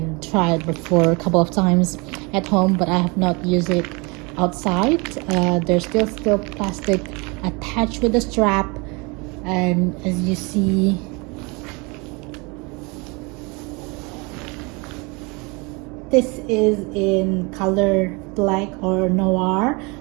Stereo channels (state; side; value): quieter; left; 28.4 dB